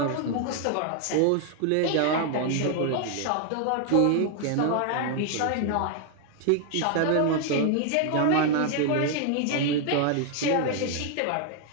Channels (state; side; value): different; both; correlation 0.00